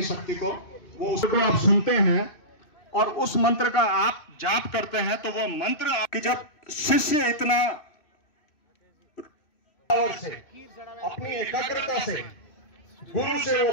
शक्ति को वो उसको आप सुनते हैं और उस मंत्र का आप जाप करते हैं, तो वो मंत्र कि जब शिष्य इतना और से अपनी एकाग्रता से गुरु से वो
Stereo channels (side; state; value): right; late; 2.6 ms